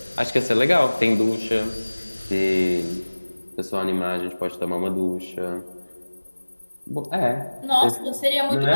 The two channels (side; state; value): both; inverted; correlation -1.00